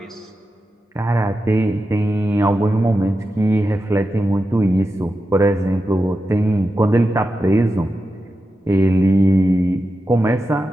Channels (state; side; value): normal; both; correlation 0.90